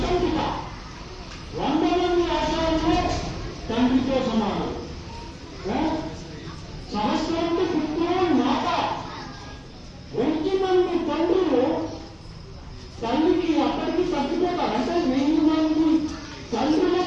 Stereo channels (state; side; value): identical; both; correlation 1.00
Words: పిత 100 మంది ఆచార్యులు తండ్రితో సమానం. సహస్రంతో పుత్రులు మాత 1000 మంది తండ్రులు తల్లికి అక్కడికి తగ్గిపోతారు. అంటే 1000 మంది